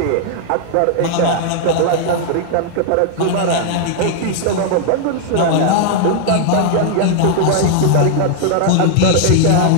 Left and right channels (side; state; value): both; different; correlation -0.01